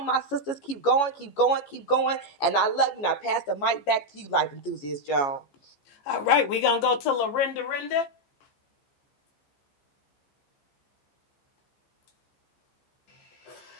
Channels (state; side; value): late; right; 14 ms